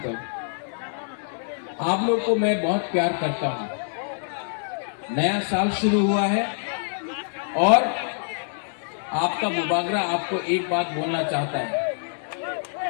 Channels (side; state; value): right; silent; digital silence